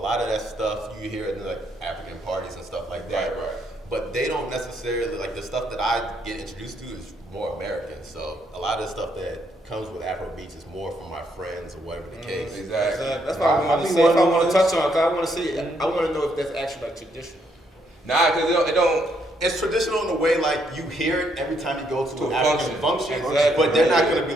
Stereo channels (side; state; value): both; normal; correlation 0.73